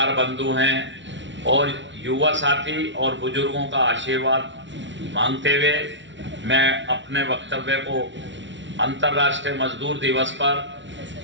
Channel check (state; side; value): late; left; 0.54 ms